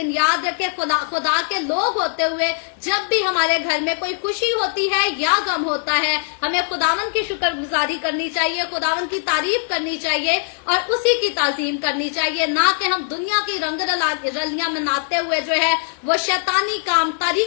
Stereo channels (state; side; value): silent; right; 65 dB below the other